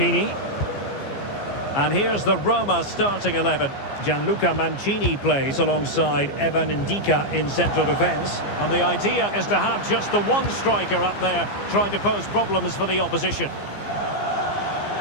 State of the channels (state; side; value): late; right; 15 ms